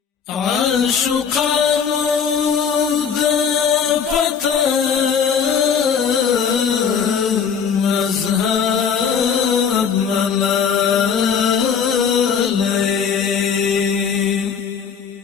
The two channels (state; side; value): quieter; right; 6.9 dB